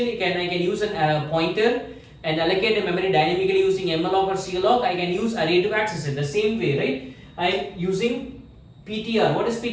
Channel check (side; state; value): both; identical; correlation 1.00